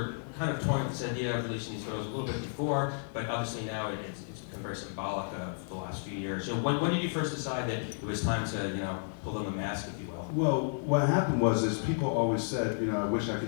kind of toying with this idea of releasing these photos a little bit before, but obviously now it's become very symbolic of the last few years. So when did you first decide that it was time to, you know, pull them a mask, if you will? Well, what happened was people always said, you know, I wish I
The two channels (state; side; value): silent; right; digital silence